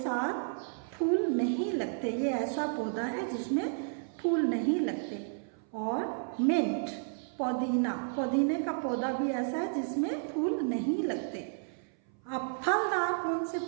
फूल नहीं लगते, ये ऐसा पौधा है जिसमें फूल नहीं लगते। और मिंट, पुदीना, पुदीने का पौधा भी ऐसा है जिसमें फूल नहीं लगते। अब फलदार कौन से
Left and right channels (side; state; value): left; silent; 56 dB below the other